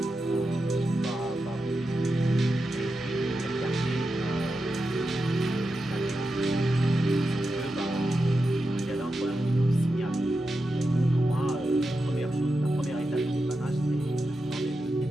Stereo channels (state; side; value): normal; both; correlation 0.89